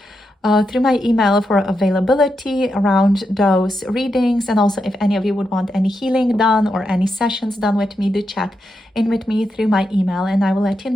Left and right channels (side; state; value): both; normal; correlation 0.85